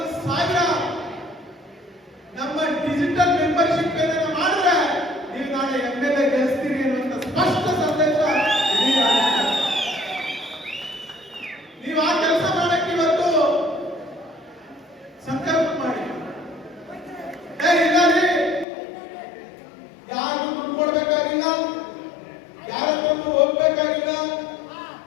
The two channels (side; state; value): right; drops out; at 18.7 s